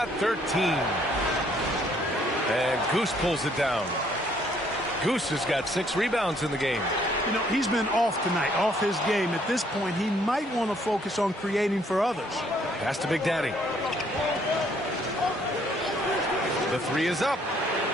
13. And Goose pulls it down. Goose has got 6 rebounds in the game. You know, he's been off tonight, off his game. At this point, he might want to focus on creating for others. Pass to Big Daddy. The 3 is up.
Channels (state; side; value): normal; both; correlation 0.65